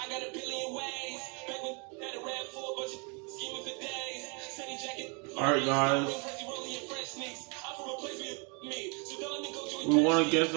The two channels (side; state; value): left; quieter; 33.7 dB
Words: got a billion ways. Back when had a rap for a bunch of scheming for days. Sunny jacket. Alright, guys. We won against